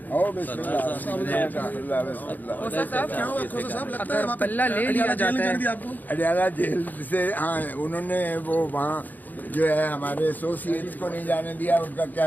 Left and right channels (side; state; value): right; late; 0.084 ms